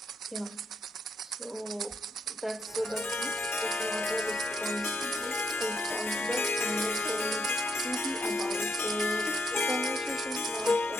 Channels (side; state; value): both; normal; correlation 0.77